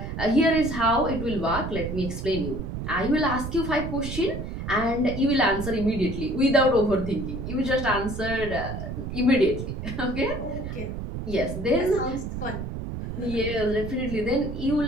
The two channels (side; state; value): right; noise; rumble, 6 dB below the sound